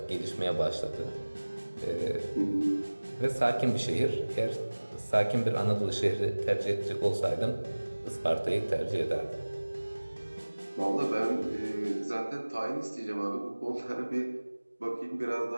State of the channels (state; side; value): inverted; both; correlation -1.00